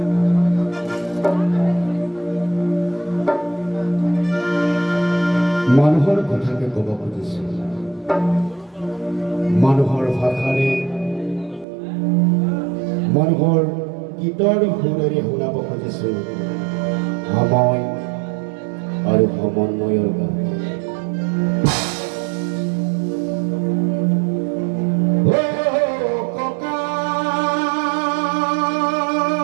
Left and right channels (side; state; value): left; drops out; at 11.7 s